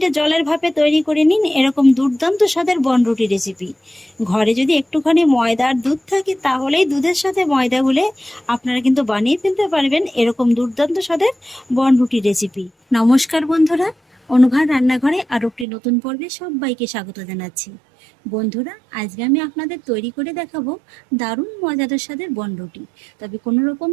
জলের ভাপে তৈরি করে নিন এরকম দুর্দান্ত স্বাদের বনরুটি রেসিপি। ঘরে যদি একটুখানি ময়দা আর দুধ থাকে তাহলেই দুধের সাথে ময়দা গুলে আপনারা কিন্তু বানিয়ে ফেলতে পারবেন এরকম দুর্দান্ত স্বাদের বনরুটি রেসিপি। নমস্কার বন্ধুরা, অনুভার রান্নাঘরে আরও একটি নতুন পর্বে সবাইকে স্বাগত জানাচ্ছি। বন্ধুরা, আজকে আমি আপনাদের তৈরি করে দেখাবো দারুণ মজাদার স্বাদের বনরুটি। তবে কোনো রকম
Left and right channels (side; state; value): left; drops out; at 15.7 s